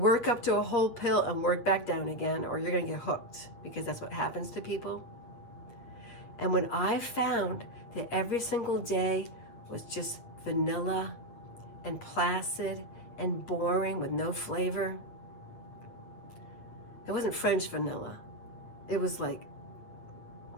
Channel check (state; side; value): late; right; 8.8 ms